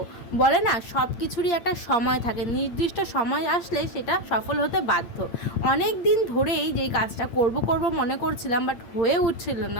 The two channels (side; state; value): right; late; 8.8 ms